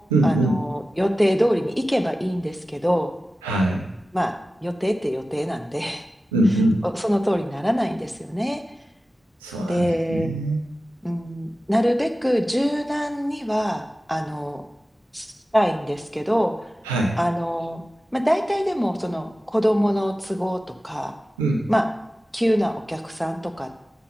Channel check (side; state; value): both; normal; correlation 0.94